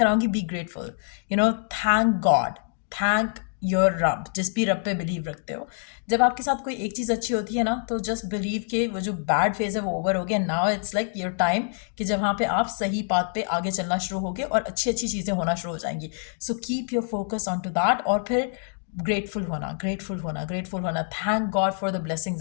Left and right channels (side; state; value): right; silent; 61 dB below the other